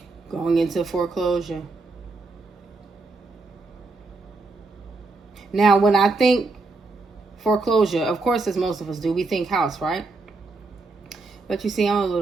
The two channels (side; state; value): left; quieter; 3.6 dB